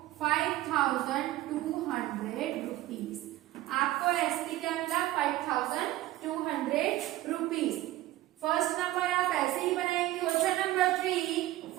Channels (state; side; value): quieter; left; 15.9 dB